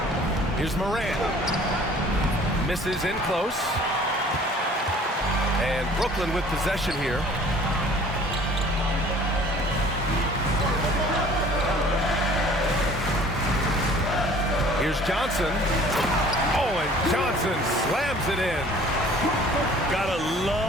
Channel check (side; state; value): both; normal; correlation 0.51